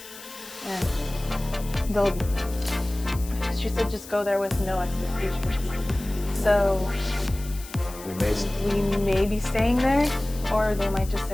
And she said just go there with no expectations. So we may be staying there or they might just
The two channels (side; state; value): left; noise; hiss, 16 dB below the sound